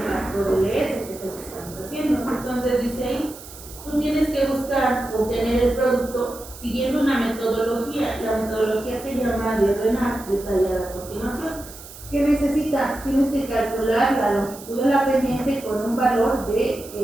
factor LS, que es el que estamos haciendo. Entonces dice ahí, tú tienes que buscar obtener el producto siguiendo una metodología. La metodología se llama de RENAR, detallada a continuación. ¿Qué necesitas? Tienes que calcular la longitud de la pendiente con un valor de,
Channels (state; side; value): noise; right; hiss, 16 dB below the sound